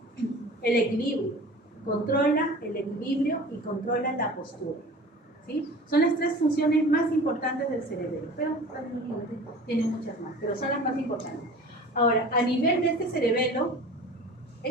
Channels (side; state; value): both; normal; correlation 0.40